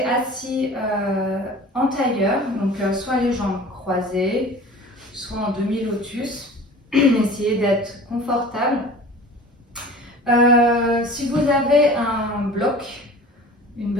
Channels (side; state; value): both; normal; correlation 0.41